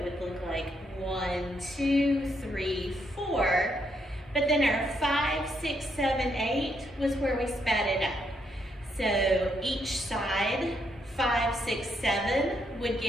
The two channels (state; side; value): normal; both; correlation 0.76